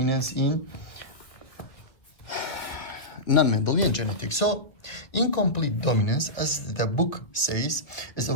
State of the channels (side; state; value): right; late; 2.2 ms